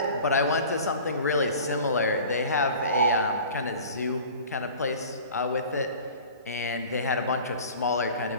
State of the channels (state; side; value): inverted; both; correlation -0.42